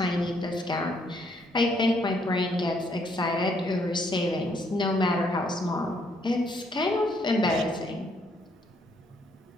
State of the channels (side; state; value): both; normal; correlation 0.70